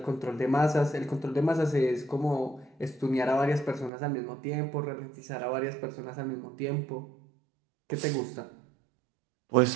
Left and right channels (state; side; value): drops out; left; at 3.9 s